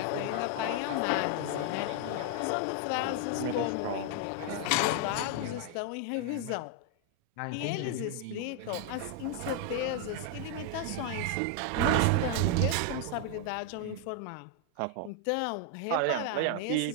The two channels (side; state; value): both; different; correlation 0.00